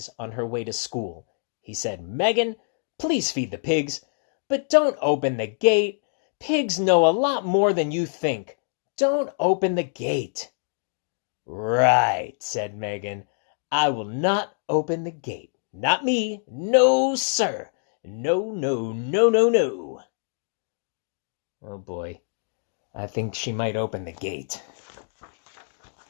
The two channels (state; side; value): silent; right; digital silence